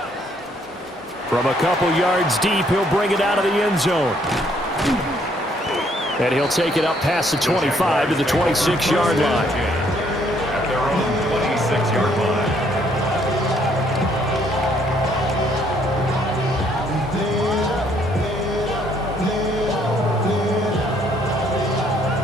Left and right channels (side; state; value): both; normal; correlation 0.67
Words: From a couple yards deep, he'll bring it out of the end zone. And he'll take it up past the 25 to the 26-yard line. At their own 26-yard line.